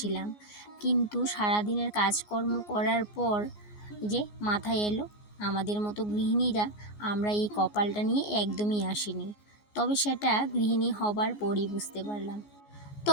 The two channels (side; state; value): right; late; 14 ms